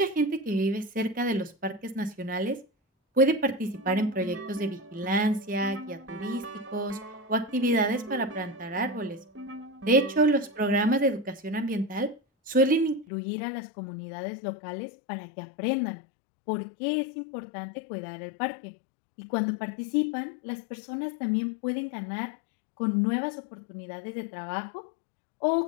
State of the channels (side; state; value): right; drops out; at 13.1 s